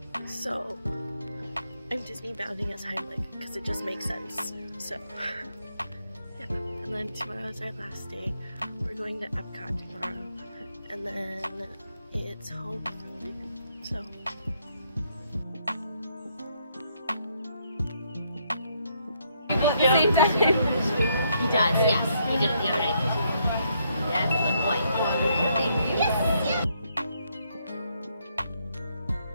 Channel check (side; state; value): both; inverted; correlation -0.74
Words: So I'm Disney bounding as Heimlich because it just makes sense. So yeah, and then tomorrow's our last day. We're going to Epcot tomorrow, and then it's home for the weekend. So At the same time. He does, yes. You did it the other night. That's a good boy. Thank you. Yes.